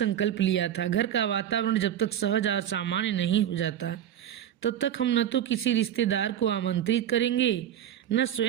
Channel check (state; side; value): quieter; left; 10.5 dB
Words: लिया था, घर का वातावरण जब तक सहज और सामान्य नहीं हो जाता तब तक हम न तो किसी रिश्तेदार को आमंत्रित करेंगे, न